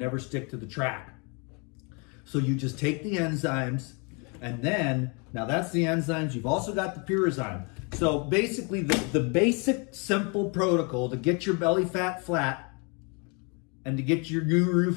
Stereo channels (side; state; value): right; quieter; 33.4 dB